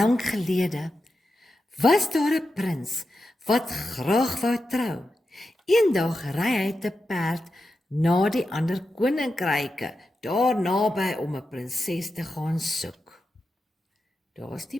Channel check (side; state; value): both; normal; correlation 0.90